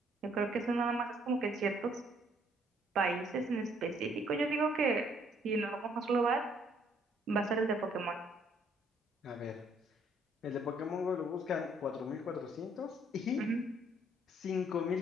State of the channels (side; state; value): both; normal; correlation 0.65